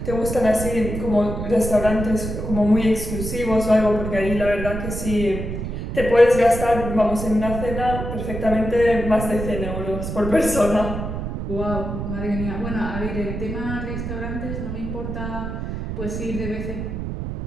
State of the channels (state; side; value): noise; right; rumble, 5 dB below the sound